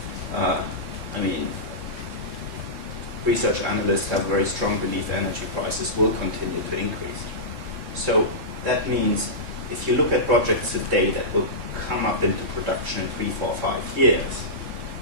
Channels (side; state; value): left; late; 3.7 ms